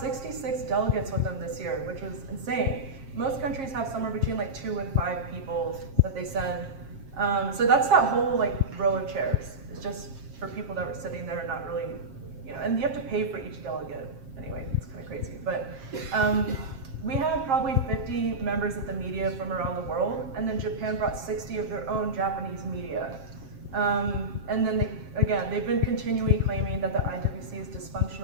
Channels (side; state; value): left; late; 7.5 ms